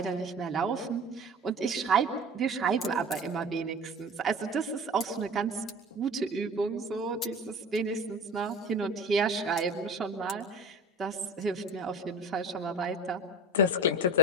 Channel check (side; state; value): both; normal; correlation 0.35